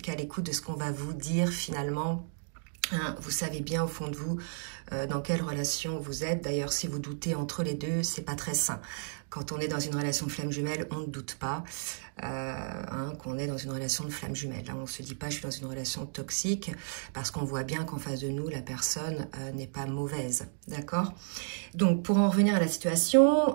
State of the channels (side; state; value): left; silent; digital silence